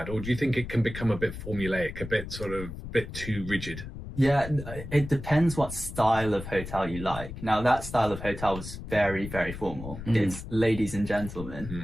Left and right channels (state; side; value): noise; left; rumble, 10 dB below the sound